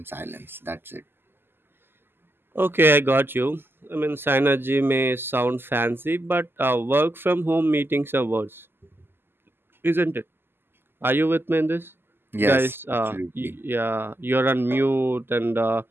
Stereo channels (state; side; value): late; left; 0.10 ms